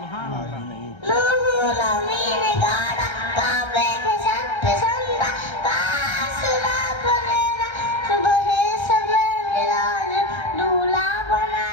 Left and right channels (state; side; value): late; right; 1.3 ms